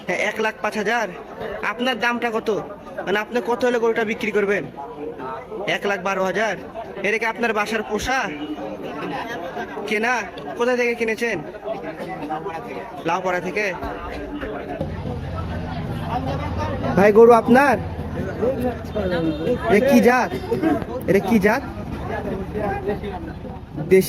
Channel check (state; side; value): identical; both; correlation 1.00